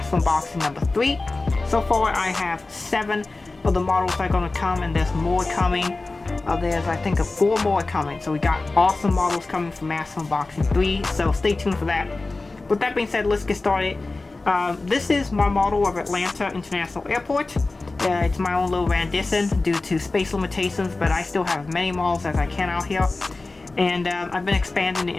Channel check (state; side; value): quieter; right; 3.4 dB